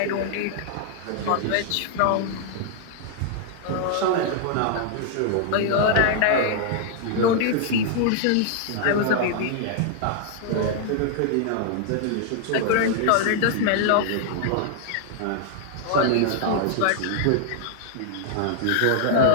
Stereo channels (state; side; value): different; both; correlation 0.00